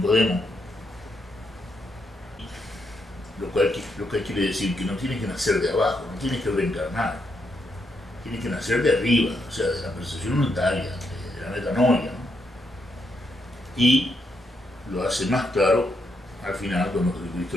Lo cual quiere decir que no tienes que nacer de abajo, no tienes que reencarnar. Tienes que nacer de arriba, o sea, de la percepción unitaria, de la metanoia, ¿no? Y lo hace más claro al final cuando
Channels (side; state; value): both; normal; correlation 0.79